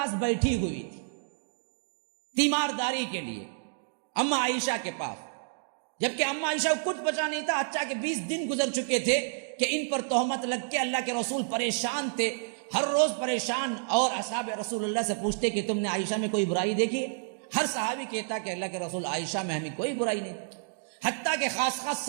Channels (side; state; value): left; silent; digital silence